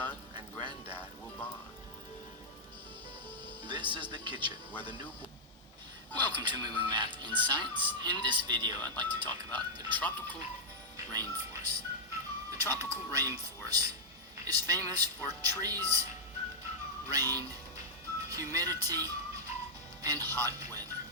and granddad will bond. This is the kitchen where the new Welcome to Moving Math in Science. In this video, I'd like to talk about the tropical rainforest. The tropical rainforest is famous for trees, rain, humidity, and hot weather.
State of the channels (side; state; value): both; normal; correlation -0.05